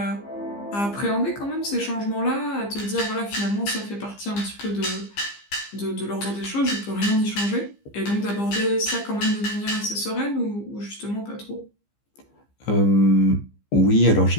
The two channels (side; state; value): right; late; 15 ms